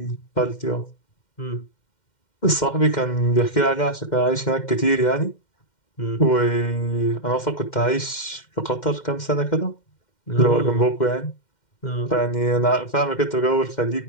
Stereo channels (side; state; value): right; late; 2.1 ms